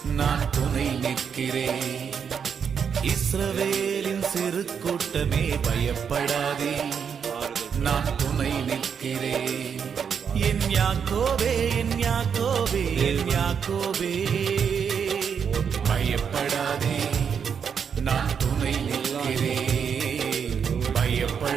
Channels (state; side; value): quieter; left; 7.1 dB